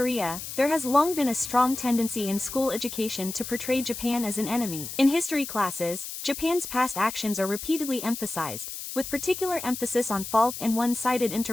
there has long been a strong tendency in school education to portray Japan as an enemy. In history classes, Japan's past actions are repeatedly emphasized, with particular emphasis on fault and one-sided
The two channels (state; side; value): noise; left; hiss, 8 dB below the sound